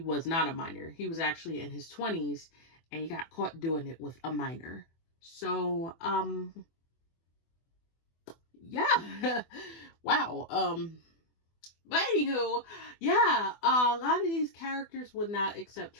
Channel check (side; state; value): right; late; 24 ms